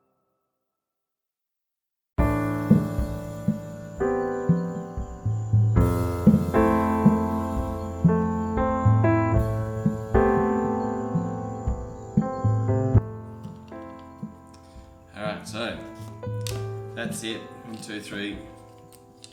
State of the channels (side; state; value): both; identical; correlation 1.00